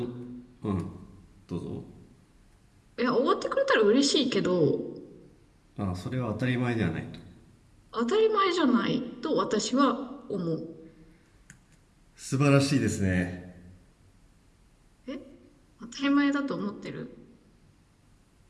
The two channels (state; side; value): identical; both; correlation 1.00